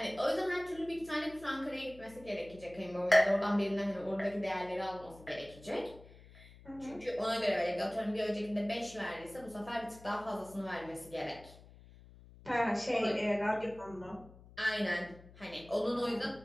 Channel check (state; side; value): noise; left; hum, 21 dB below the sound